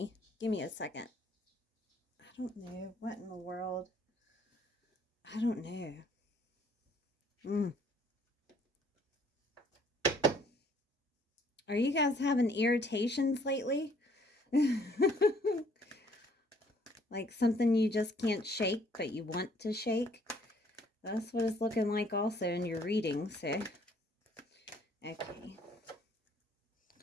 Give me a second. I don't know. What in the world? I don't know. Are you guys having irritations lately? Like something you just can't shake, but you want to shake? That's what it's looking like also in your reading, so. Okay.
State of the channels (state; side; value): normal; both; correlation 0.61